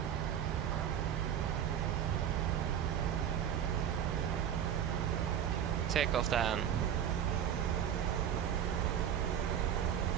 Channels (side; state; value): left; quieter; 9.3 dB